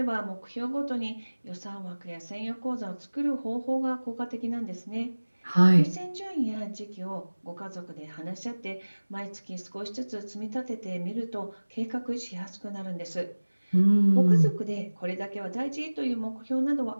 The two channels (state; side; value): inverted; both; correlation -1.00